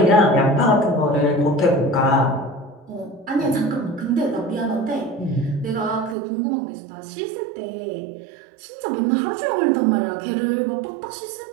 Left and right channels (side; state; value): left; drops out; at 6.2 s